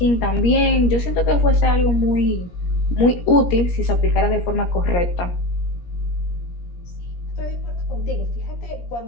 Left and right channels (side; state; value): right; late; 17 ms